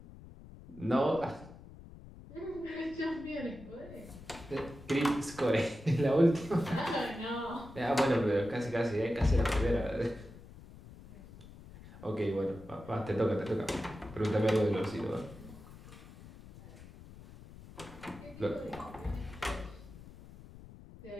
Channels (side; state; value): left; noise; rumble, 17 dB below the sound